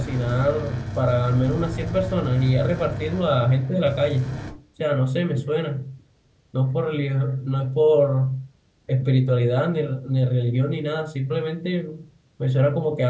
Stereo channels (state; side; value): identical; both; correlation 1.00